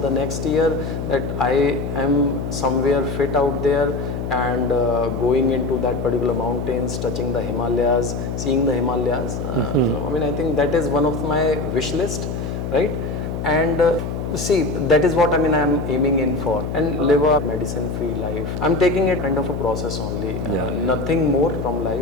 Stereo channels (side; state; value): left; noise; hum, 4 dB below the sound